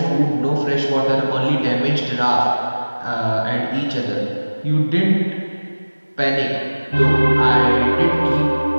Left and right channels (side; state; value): both; inverted; correlation -1.00